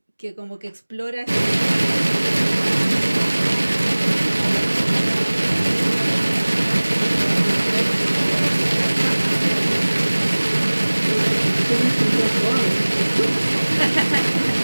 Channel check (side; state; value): both; inverted; correlation -1.00